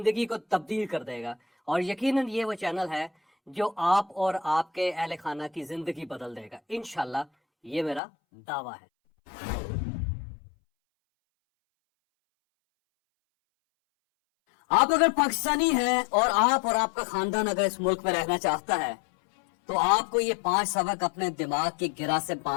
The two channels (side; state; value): right; drops out; at 8.0 s